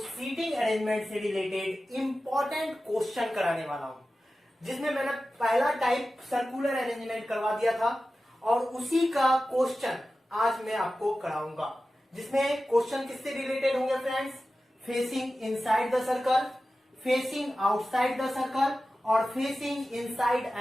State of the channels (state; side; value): normal; both; correlation 0.94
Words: अरेंजमेंट से रिलेटेड इंपॉर्टेंट क्वेश्चन कराने वाला हूं, जिसमें मैंने पहला टाइप सर्कुलर अरेंजमेंट करवा दिया था और उसी का क्वेश्चन आज मैं आपको कराऊंगा, जिसमें क्वेश्चन किससे रिलेटेड होंगे friends? Facing inside the circle, facing outside the circle और facing inside